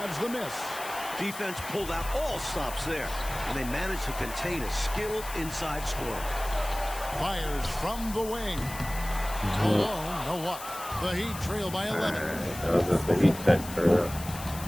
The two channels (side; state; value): left; noise; hiss, 12 dB below the sound